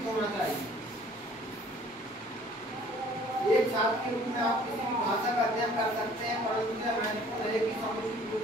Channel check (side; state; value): both; normal; correlation 0.54